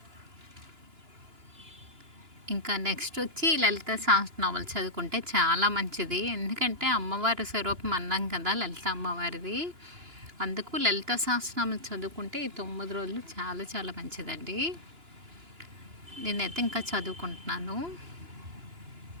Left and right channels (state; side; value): late; left; 2.9 ms